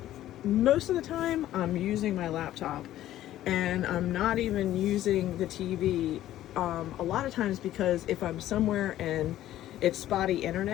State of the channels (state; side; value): quieter; right; 13.4 dB